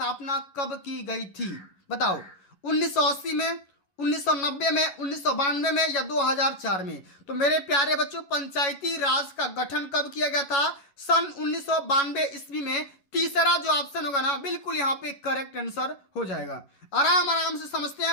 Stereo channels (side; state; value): right; late; 11 ms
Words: कब की गई थी, बताओ। 1980 में, 1990 में, 1992 में या 2004 में। तो मेरे प्यारे बच्चों पंचायती राज का गठन कब किया गया था, सन 1992 ईस्वी में। तीसरा जो ऑप्शन होगा ना बिल्कुल यहाँ पे करेक्ट आंसर हो जाएगा। आराम आराम से समझते